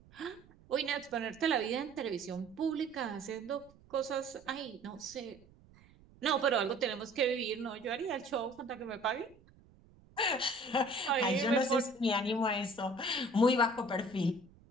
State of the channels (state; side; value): noise; right; rumble, 26 dB below the sound